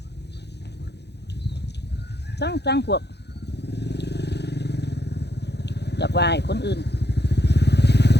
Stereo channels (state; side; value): late; right; 0.49 ms